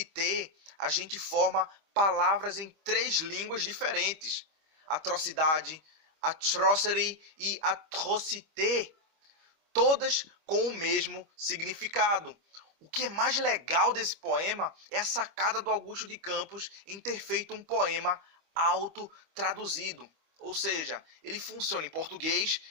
a gente forma palavras em 3 línguas diferentes. Atrocidade, atrocity e atrocité, todas com o mesmo significado. O que é mais legal desse poema é a sacada do Augusto de Campos em ter feito um poema autotraduzido. Ou seja, ele funciona em português,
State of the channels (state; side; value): late; left; 25 ms